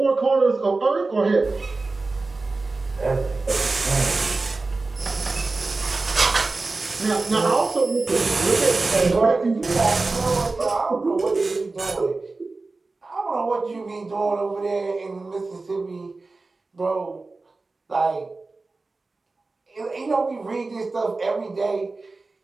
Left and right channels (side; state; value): left; quieter; 3.6 dB